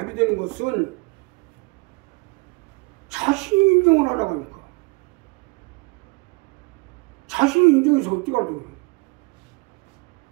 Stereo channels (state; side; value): quieter; left; 28.3 dB